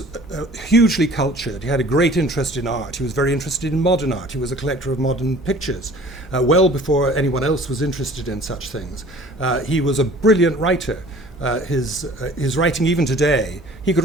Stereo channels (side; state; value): both; normal; correlation 0.49